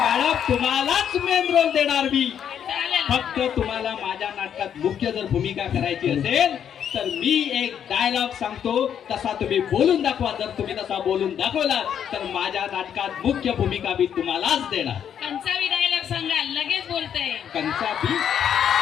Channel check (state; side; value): quieter; right; 8.8 dB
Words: तुम्हालाच मेन रोल देणार मी. चालेल. फक्त तुम्हाला माझ्या नाटकात मुख्य जर भूमिका करायची असेल तर मी एक डायलॉग सांगतो. तसा तुम्ही बोलून दाखवा. जर तुम्ही तसा बोलून दाखवला तर माझ्या नाटकात मुख्य भूमिका मी तुम्हालाच देणार. कंचावी डायलॉग सांगा. लगेच बोलतय. कंचाबी.